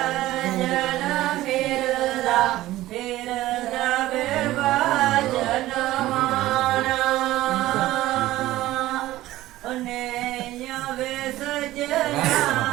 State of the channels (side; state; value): left; quieter; 16.0 dB